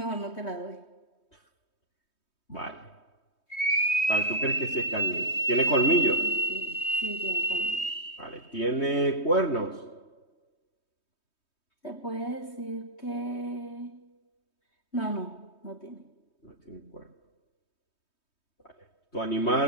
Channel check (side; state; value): right; late; 3.2 ms